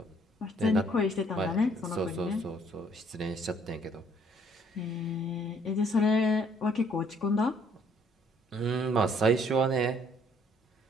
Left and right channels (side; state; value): both; normal; correlation 0.63